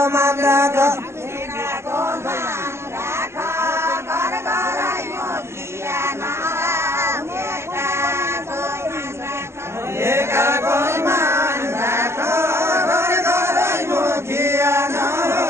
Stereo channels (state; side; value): late; left; 0.13 ms